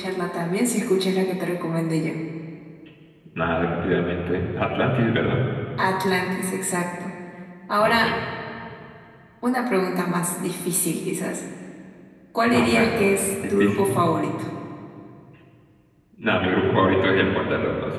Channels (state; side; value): identical; both; correlation 1.00